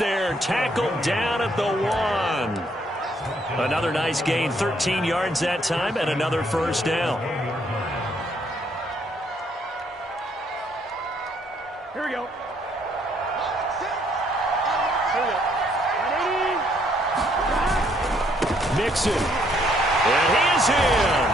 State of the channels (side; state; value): both; normal; correlation 0.68